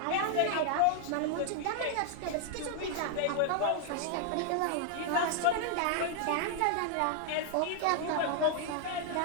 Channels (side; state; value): both; different; correlation 0.00